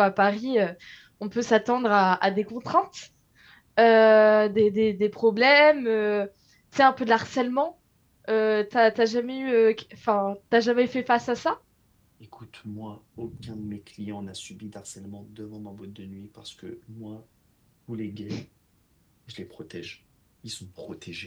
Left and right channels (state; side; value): identical; both; correlation 1.00